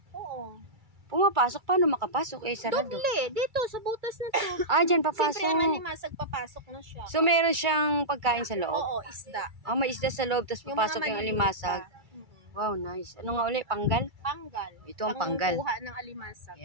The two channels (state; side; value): late; left; 2.3 ms